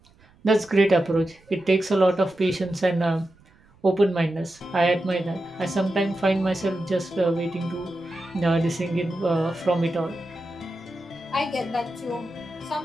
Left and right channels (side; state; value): right; noise; rumble, 29 dB below the sound